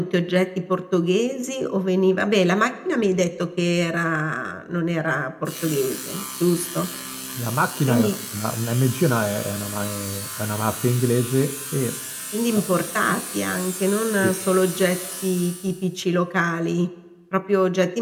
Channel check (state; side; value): identical; both; correlation 1.00